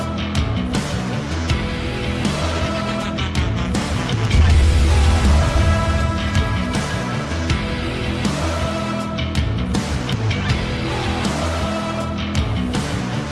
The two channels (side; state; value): both; identical; correlation 1.00